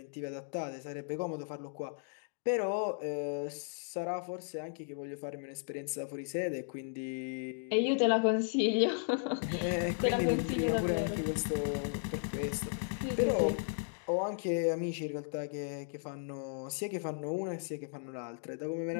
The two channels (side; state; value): right; silent; digital silence